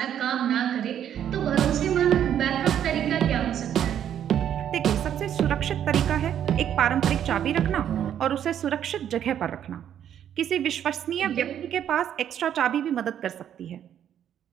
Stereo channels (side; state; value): left; quieter; 9.9 dB